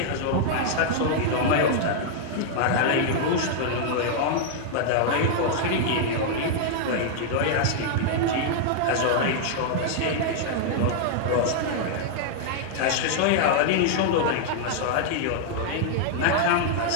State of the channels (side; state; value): both; different; correlation -0.01